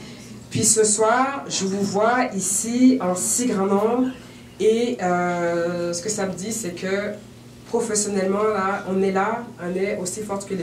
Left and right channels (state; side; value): identical; both; correlation 1.00